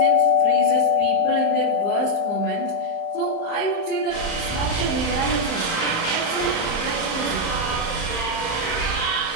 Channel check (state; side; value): late; right; 35 ms